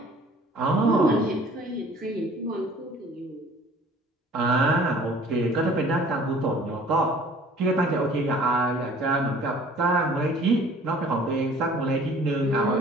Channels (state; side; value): normal; both; correlation 0.51